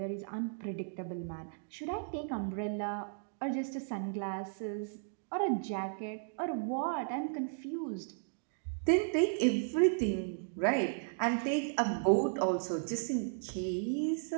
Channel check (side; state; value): left; silent; digital silence